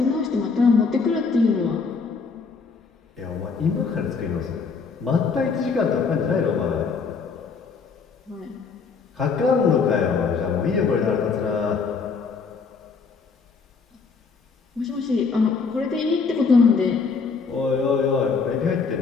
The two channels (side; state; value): right; quieter; 5.1 dB